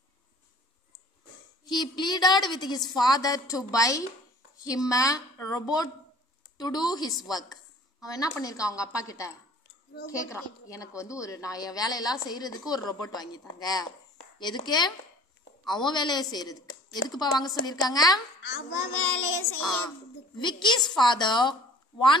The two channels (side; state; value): both; normal; correlation 0.48